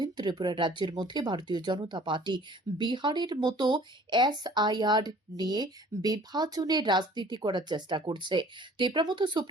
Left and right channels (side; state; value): both; normal; correlation 0.51